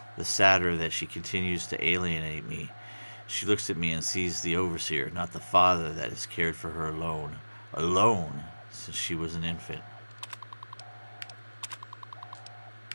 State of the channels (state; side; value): inverted; both; correlation -1.00